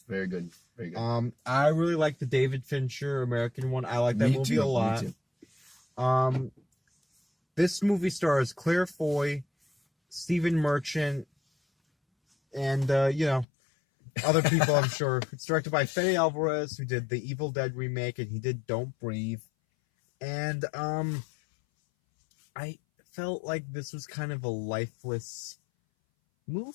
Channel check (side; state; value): right; drops out; at 13.5 s